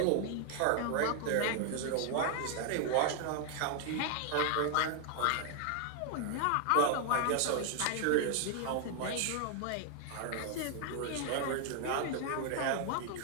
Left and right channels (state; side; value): different; both; correlation 0.00